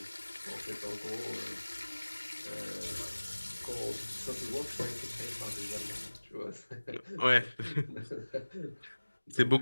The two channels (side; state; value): both; inverted; correlation -1.00